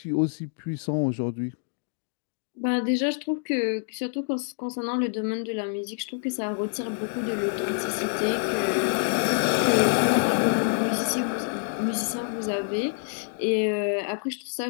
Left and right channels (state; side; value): silent; right; digital silence